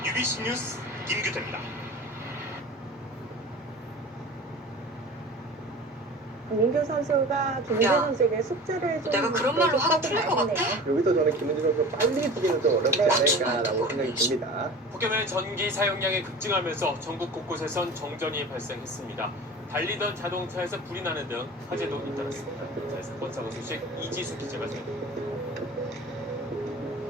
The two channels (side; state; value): both; normal; correlation 0.38